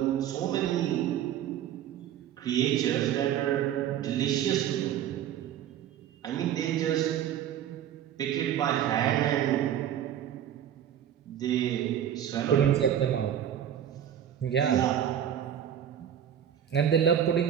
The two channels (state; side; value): quieter; left; 10.0 dB